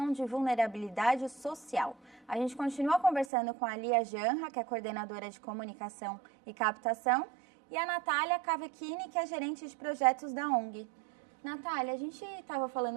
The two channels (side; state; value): left; drops out; at 3.2 s